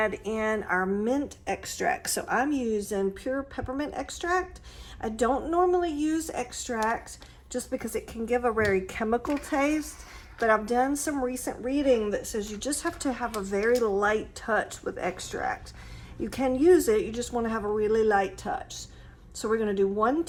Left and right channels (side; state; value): both; identical; correlation 1.00